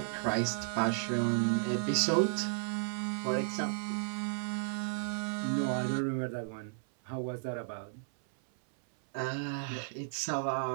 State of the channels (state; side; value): silent; left; 55 dB below the other